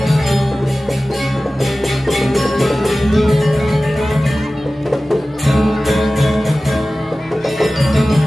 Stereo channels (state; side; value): normal; both; correlation 0.96